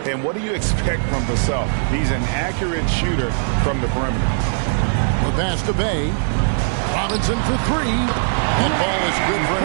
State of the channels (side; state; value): left; silent; digital silence